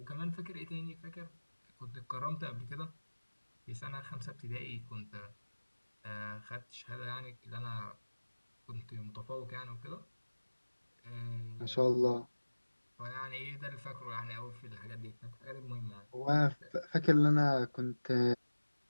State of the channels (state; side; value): inverted; both; correlation -1.00